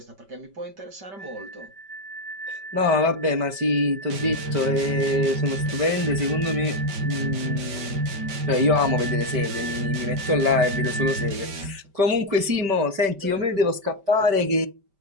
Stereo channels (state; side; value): late; left; 5.1 ms